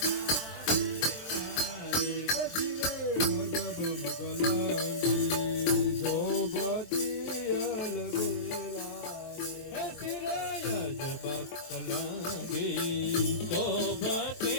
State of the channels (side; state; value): right; late; 22 ms